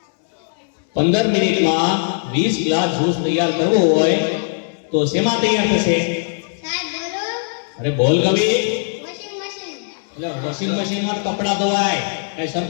15 મિનિટમાં 20 ગ્લાસ જ્યુસ તૈયાર કરવો હોય તો શેમાં તૈયાર થશે? સાહેબ બોલું. અરે બોલ કવિ. Washing machine. એટલે વોશિંગ મશીનમાં કપડા ધોવાય, કઈ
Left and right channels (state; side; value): silent; right; digital silence